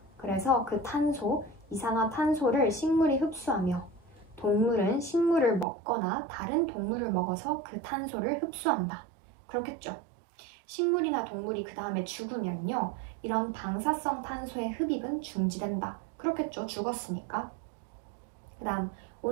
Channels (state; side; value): drops out; left; at 5.7 s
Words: 그래서 그 이산화탄소를 식물이 흡수하며 동물은 식물을 먹거나 다른 동물을 먹어서 그 탄소를 흡수한다. 그렇겠죠. 식물이나 동물이 그 다음에 죽으면요. 이런 방사성 탄소의 흡입은 중지된다. 그렇겠죠. 죽었으니까. 그 다음